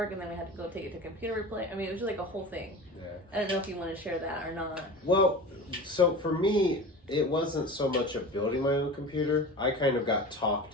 and then we had to go take it to computer replace. I mean, it was just a whole thing. Yeah. I don't know if you want to share that or not. Well, so for me, it wasn't so much of building my own computer. I kind of got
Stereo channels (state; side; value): normal; both; correlation 0.33